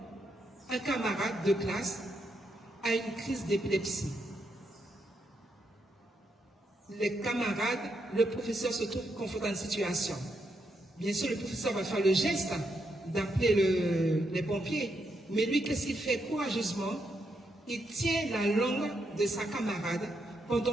Un camarade de classe a une crise d'épilepsie. Les camarades, le professeur se trouve confronté à une situation. Bien sûr, le professeur va faire le geste d'appeler les pompiers. Mais lui, qu'est-ce qu'il fait courageusement? Il tient la langue de sa camarade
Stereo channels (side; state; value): both; normal; correlation 0.80